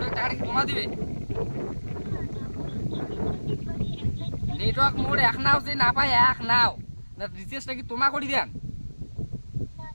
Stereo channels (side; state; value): both; inverted; correlation -1.00